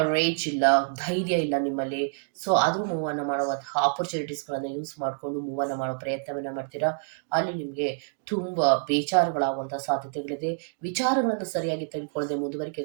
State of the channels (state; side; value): silent; left; 60 dB below the other